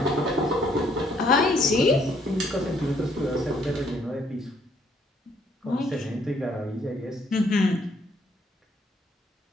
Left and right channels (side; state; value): both; normal; correlation 0.66